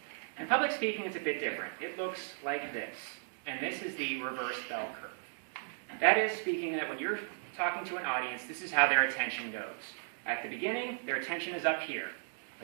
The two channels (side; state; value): left; silent; digital silence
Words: In public speaking, it's a bit different. It looks like this, and this is the reverse bell curve. That is speaking that when you're talking to an audience, this is how their attention goes. At the beginning, their attention is up here.